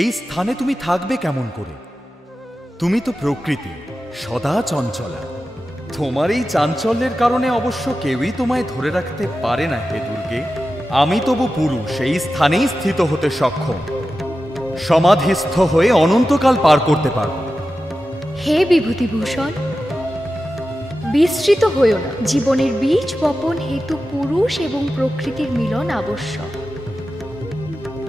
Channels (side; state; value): both; normal; correlation 0.93